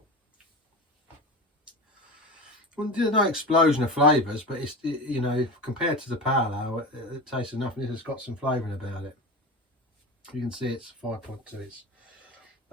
Well, there's no explosion of flavours, but you know, compared to the pale ale, it tastes enough, and it's got some flavouring about it. You can see it's 5.2. It's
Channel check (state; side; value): normal; both; correlation 0.27